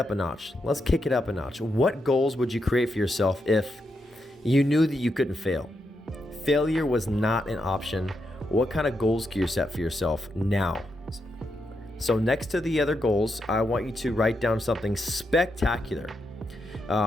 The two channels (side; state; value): both; normal; correlation 0.83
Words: a notch. Let's kick it up a notch. What goals would you create for yourself if you knew that you couldn't fail? Failure was not an option. What kind of goals can you set for yourself now? So next to the other goals, I want you to write down something spectacular